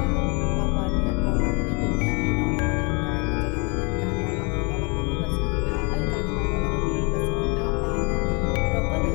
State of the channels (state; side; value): quieter; right; 31.9 dB